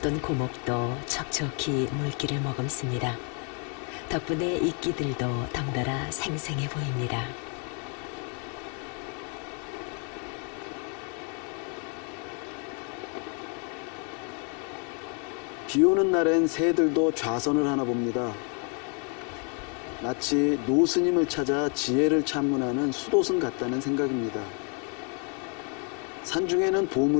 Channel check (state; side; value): quieter; right; 38.9 dB